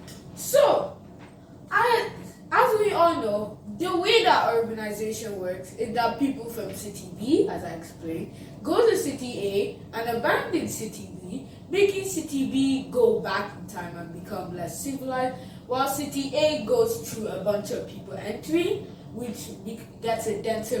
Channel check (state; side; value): identical; both; correlation 1.00